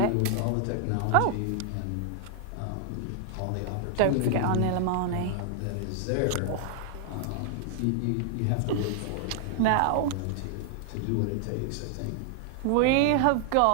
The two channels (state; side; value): different; both; correlation 0.00